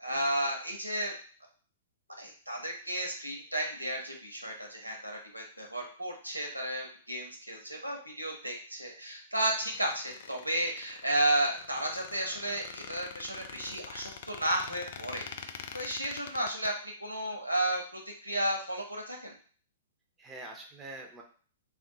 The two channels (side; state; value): both; inverted; correlation -0.70